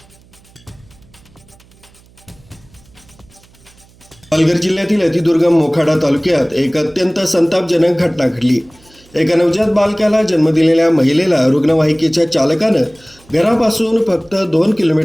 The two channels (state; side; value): noise; right; hum, 29 dB below the sound